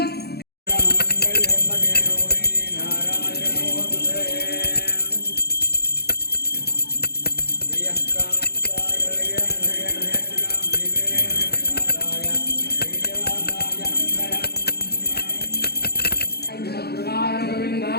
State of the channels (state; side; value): late; right; 0.47 ms